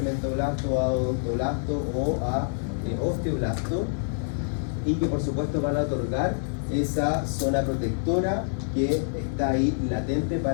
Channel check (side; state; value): right; silent; digital silence